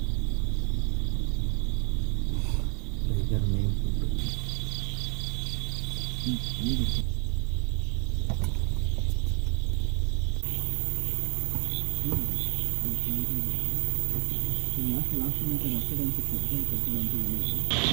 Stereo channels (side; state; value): left; quieter; 35.9 dB